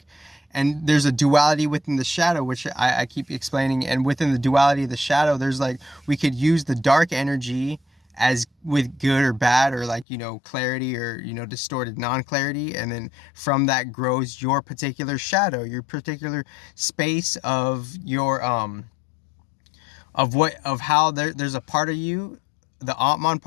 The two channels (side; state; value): right; drops out; at 10.1 s